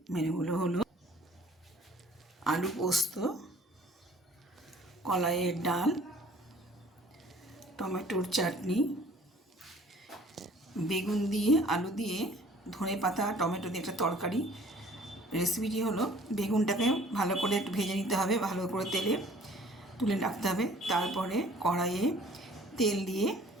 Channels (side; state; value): both; normal; correlation 0.53